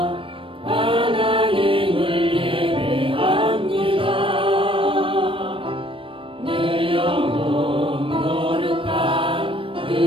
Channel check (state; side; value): late; left; 0.25 ms